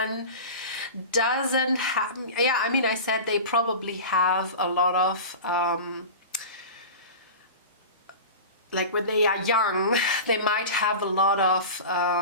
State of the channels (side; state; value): both; inverted; correlation -0.31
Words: doesn't have, yeah, I mean, I said they probably have a lot of like when they are young, they might have a lot of